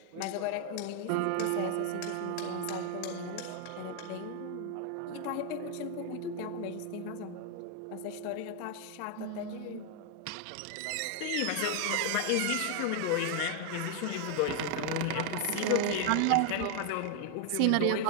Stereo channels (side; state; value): both; different; correlation 0.00